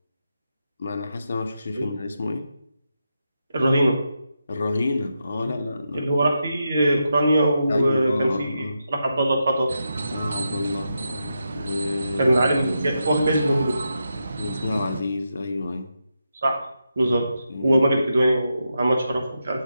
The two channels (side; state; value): both; inverted; correlation -0.86